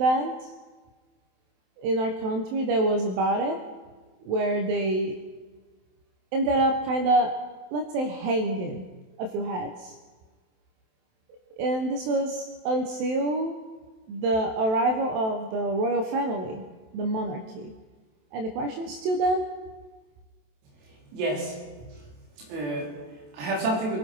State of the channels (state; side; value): late; left; 27 ms